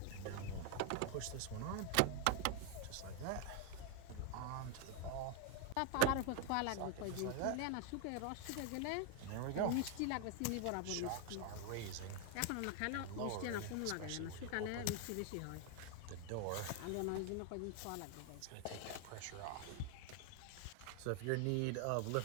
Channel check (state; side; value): different; both; correlation 0.00